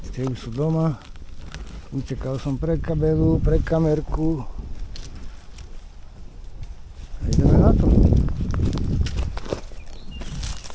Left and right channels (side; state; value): both; identical; correlation 1.00